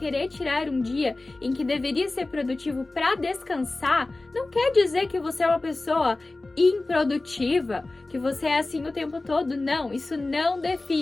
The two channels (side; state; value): right; quieter; 3.1 dB